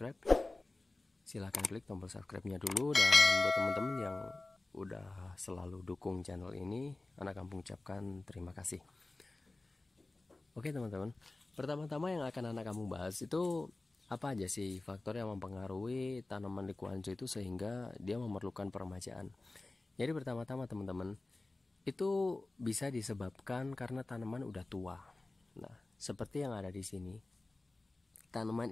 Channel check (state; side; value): quieter; right; 3.0 dB